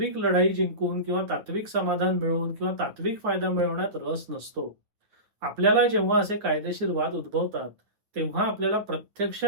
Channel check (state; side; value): late; left; 9.5 ms